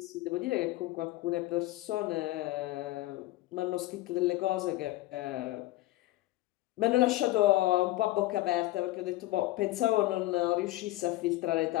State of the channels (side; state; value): right; quieter; 17.6 dB